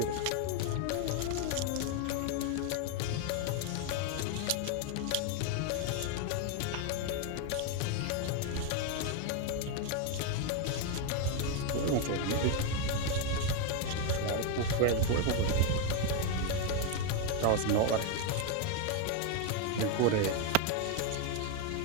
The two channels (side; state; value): both; different; correlation 0.01